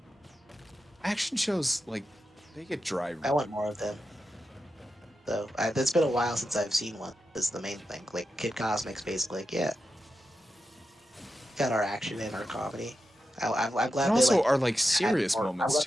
Action shows, like, they get dry. I want more of them. So it's been a while since I've seen one. Is the main thing. Like Kid Cosmic's basically like, yeah, got our action and our comedy. I'm And glad they also like are, like, had serious more. I'm moments, glad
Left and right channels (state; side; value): normal; both; correlation 0.89